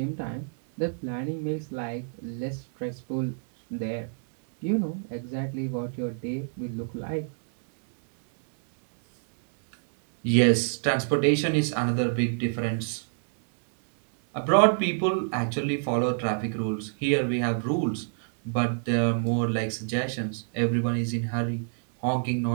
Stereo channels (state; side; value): silent; left; digital silence